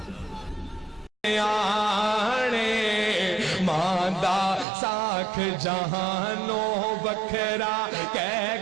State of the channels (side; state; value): left; drops out; at 4.7 s